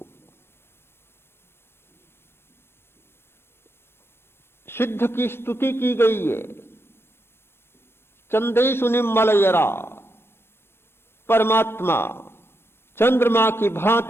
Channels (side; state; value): right; late; 0.12 ms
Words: सिद्ध की स्तुति की गई है। चंदेषु निम्मलयरा, परमात्मा चंद्रमा की